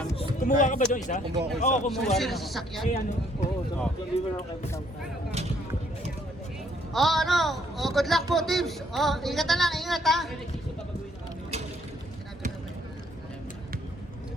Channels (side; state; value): both; normal; correlation 0.66